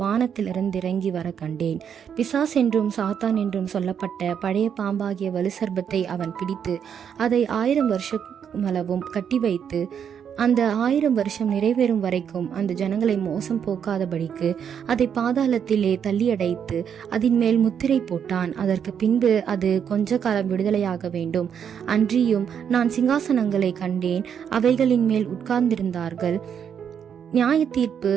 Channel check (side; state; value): left; quieter; 8.0 dB